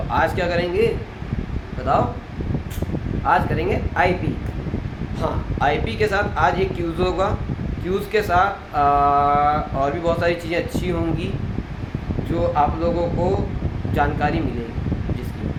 आज क्या करेंगे बताओ? आज करेंगे आईपी। हाँ, आईपी के साथ आज एक क्यूज़ होगा। क्यूज़ के साथ और भी बहुत सारी चीज़ें अच्छी होंगी जो आप लोगों को जानकारी मिलेगी।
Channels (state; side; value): identical; both; correlation 1.00